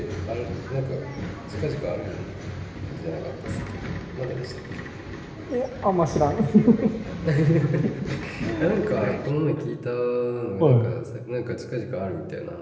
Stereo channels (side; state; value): both; identical; correlation 1.00